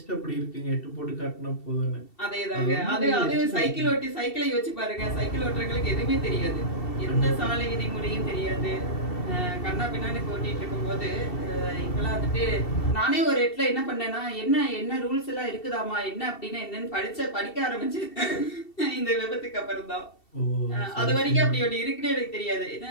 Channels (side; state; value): right; late; 2.7 ms